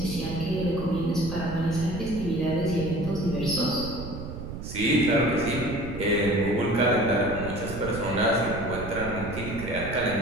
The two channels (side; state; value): right; noise; rumble, 9 dB below the sound